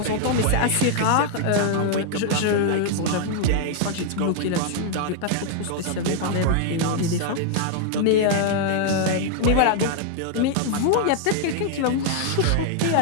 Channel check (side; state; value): both; different; correlation 0.00